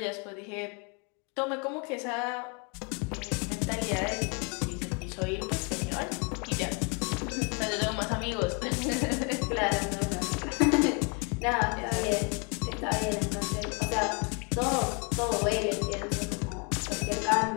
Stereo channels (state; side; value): quieter; right; 34.3 dB